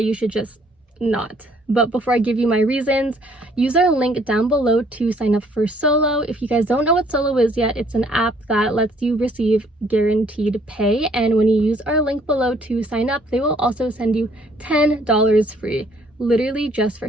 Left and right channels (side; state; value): both; normal; correlation 0.63